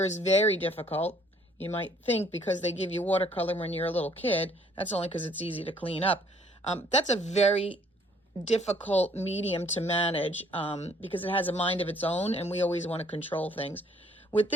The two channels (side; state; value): both; normal; correlation 0.61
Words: is very difficult. You might think because they give you watercolor when you're a little kid, that's only because it's easy to clean up. That's a very difficult medium to manage because it has a mind of its own and we always want to control things. With